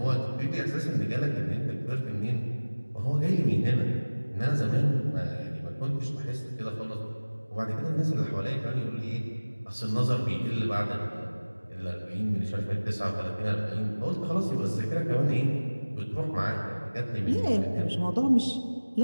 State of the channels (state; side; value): inverted; both; correlation -1.00